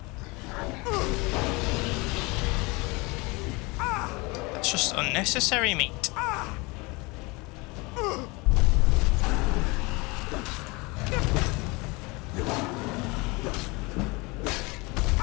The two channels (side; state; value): right; quieter; 25.9 dB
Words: That's just unnecessary, mate.